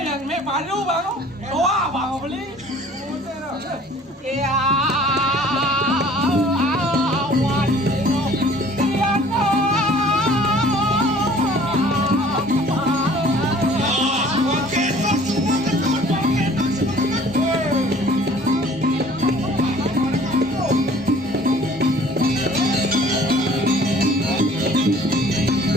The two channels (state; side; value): normal; both; correlation 0.51